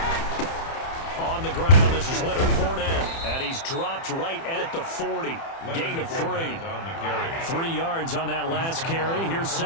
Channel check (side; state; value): right; late; 30 ms